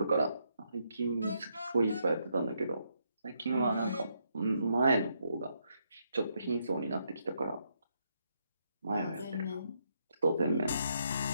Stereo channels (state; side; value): inverted; both; correlation -0.77